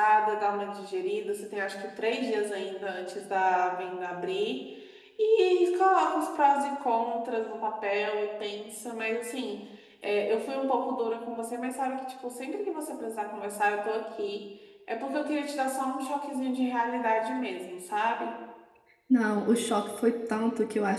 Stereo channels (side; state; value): both; identical; correlation 1.00